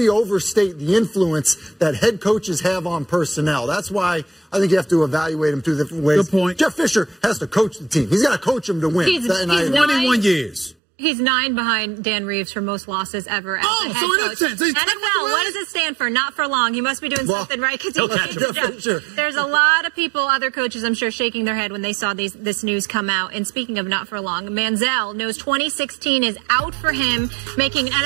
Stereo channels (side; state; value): left; drops out; at 10.8 s